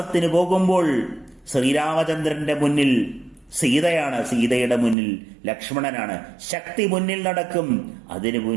പോകുമ്പോൾ ശ്രീരാമചന്ദ്രന്റെ മുന്നിൽ സീതയാണ്, സീതയുടെ മുന്നിൽ ലക്ഷ്മണനാണ്. ശക്തി മുന്നിൽ നടക്കും, അതിനു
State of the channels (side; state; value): left; drops out; at 5.0 s